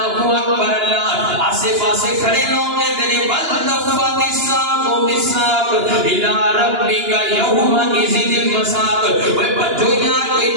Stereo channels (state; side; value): late; left; 2.9 ms